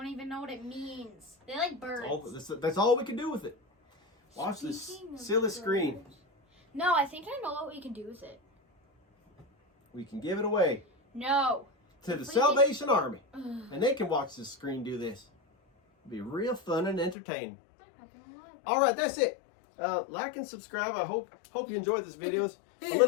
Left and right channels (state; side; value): drops out; right; at 17.2 s